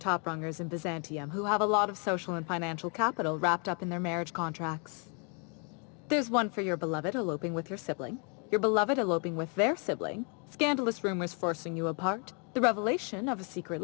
in Byzantium who have a lot of social and financial capital wrapped up in their marriage contracts. There's one for your beloved eloping with your sibling, your beloved eloping with their sibling, scandalous rumors forcing you apart, the revelation of a secret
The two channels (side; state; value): right; quieter; 37.0 dB